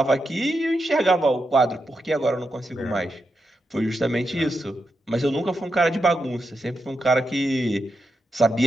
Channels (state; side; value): normal; both; correlation 0.87